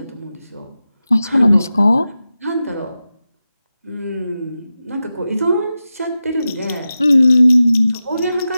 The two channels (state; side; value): inverted; both; correlation -0.93